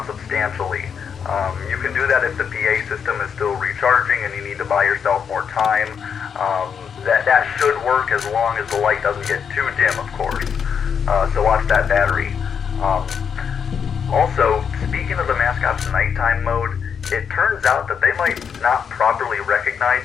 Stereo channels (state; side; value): quieter; right; 7.1 dB